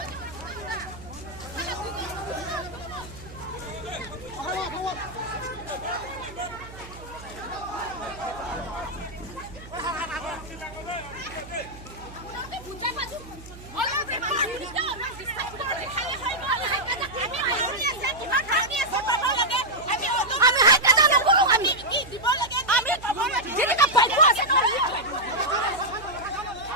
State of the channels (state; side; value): noise; right; hum, 17 dB below the sound